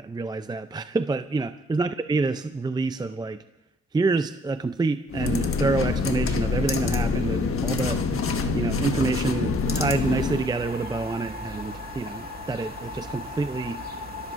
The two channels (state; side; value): normal; both; correlation 0.63